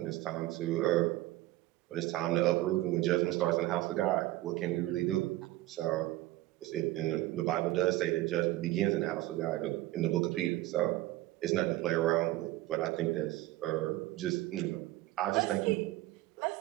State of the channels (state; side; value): quieter; left; 17.1 dB